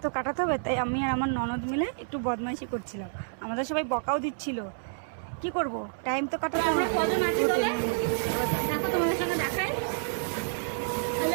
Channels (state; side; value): silent; left; 59 dB below the other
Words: তো কাটাতে হবে, তাই আমি আর আমার ননদ মিলে একটু বদমাইশি করছিলাম। আমাদের সবাই বকাও দিচ্ছিল, কি করব, টাইম তো কাটাতে হবে। আমরা কজন আছি দলে? দেখো তোমাদের সঙ্গে দেখাই। হ্যালো